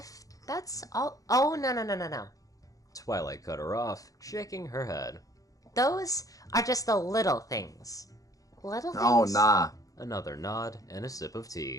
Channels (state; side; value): late; right; 0.17 ms